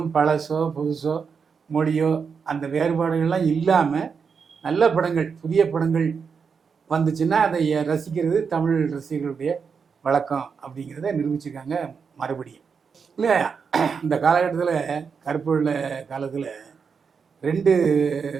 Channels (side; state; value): left; quieter; 5.9 dB